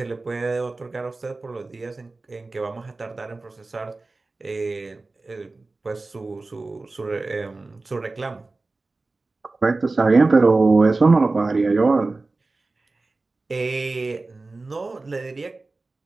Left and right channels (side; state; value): left; quieter; 3.4 dB